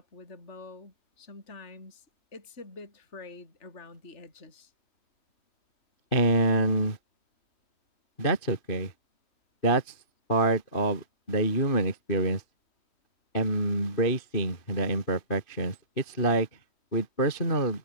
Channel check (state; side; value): late; right; 2.6 ms